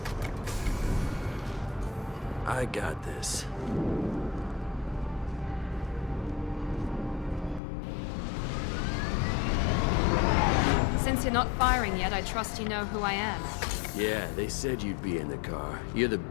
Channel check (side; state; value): right; drops out; at 7.6 s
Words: I got this. Since you're not firing yet, I trust you know who I am. Yeah, they said you'd be in the car. You're the